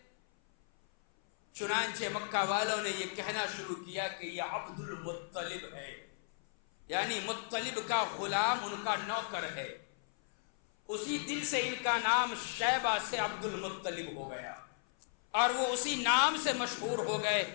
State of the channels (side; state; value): right; silent; 54 dB below the other